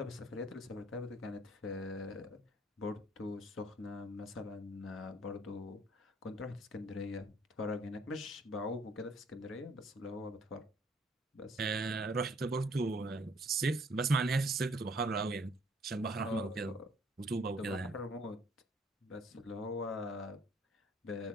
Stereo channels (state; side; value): normal; both; correlation 0.62